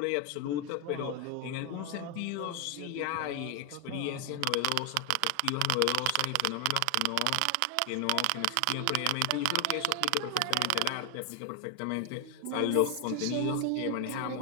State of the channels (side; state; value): both; different; correlation 0.00